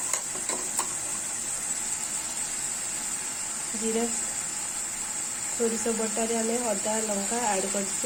जीरा सोरिष बटा रे हमें अदा लंका ऐड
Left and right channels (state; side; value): identical; both; correlation 1.00